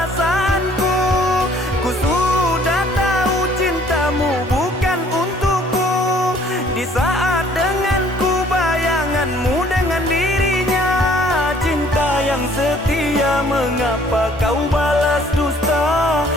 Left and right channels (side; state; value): both; normal; correlation 0.58